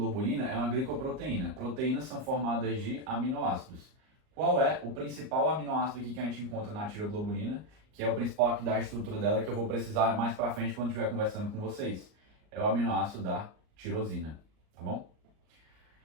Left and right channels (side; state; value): left; late; 38 ms